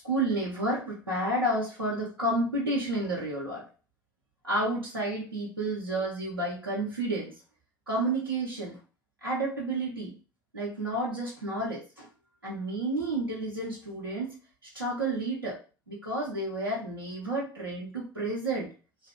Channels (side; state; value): both; normal; correlation 0.17